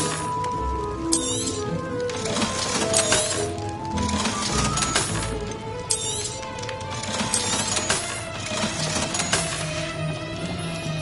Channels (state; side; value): identical; both; correlation 1.00